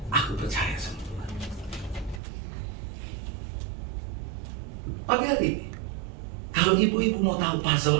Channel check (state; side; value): drops out; left; at 2.2 s